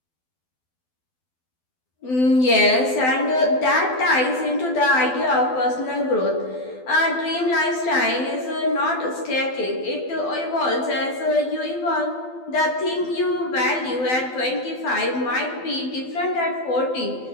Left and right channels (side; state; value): right; late; 12 ms